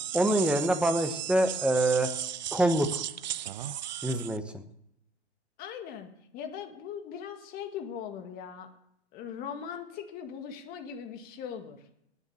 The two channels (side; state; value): both; normal; correlation 0.69